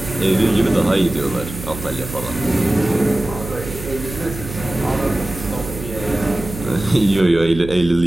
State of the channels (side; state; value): right; noise; hum, 11 dB below the sound